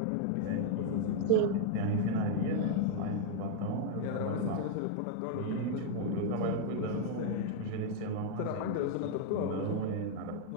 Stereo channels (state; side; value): different; both; correlation 0.00